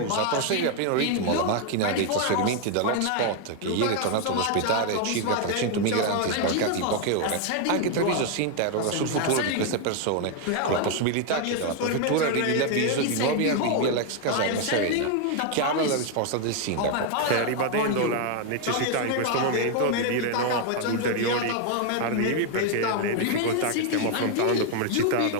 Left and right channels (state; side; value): different; both; correlation 0.01